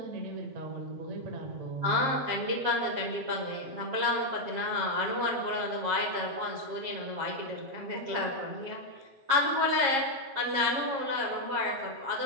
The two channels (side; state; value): left; late; 7.4 ms